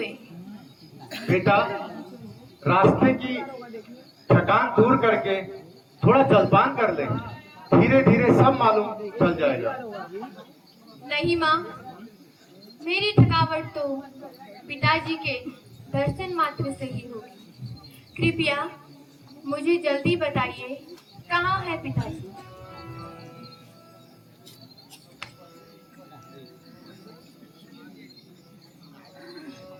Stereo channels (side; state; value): both; identical; correlation 1.00